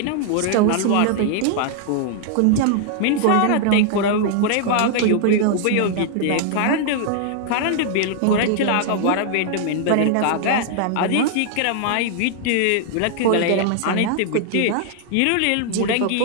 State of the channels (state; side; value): different; both; correlation 0.00